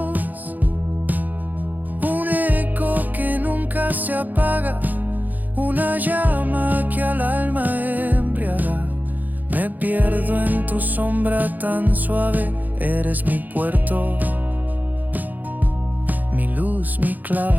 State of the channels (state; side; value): late; left; 0.083 ms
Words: un eco que nunca se apaga, una llama que al alma embriaga. Me pierdo en tu sombra tan suave, eres mi puerto, mi luz, mi